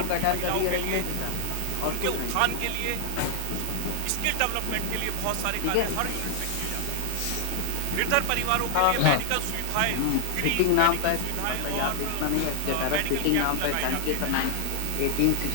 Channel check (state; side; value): different; both; correlation 0.00